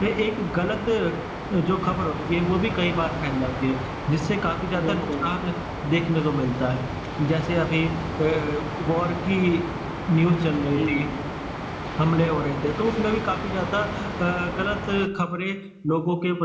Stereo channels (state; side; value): identical; both; correlation 1.00